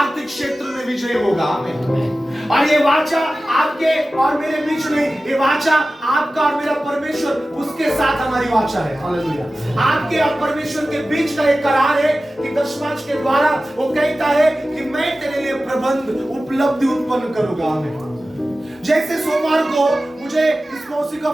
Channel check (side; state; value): both; normal; correlation 0.95